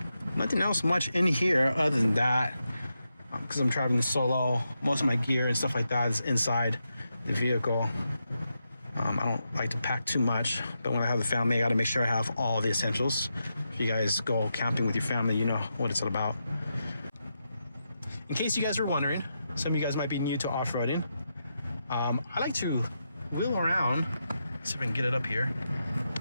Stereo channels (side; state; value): both; inverted; correlation -0.86